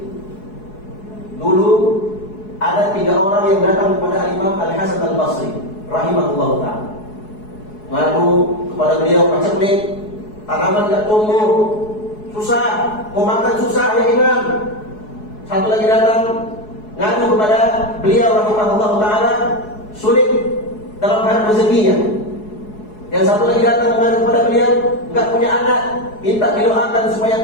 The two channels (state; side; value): late; right; 4.7 ms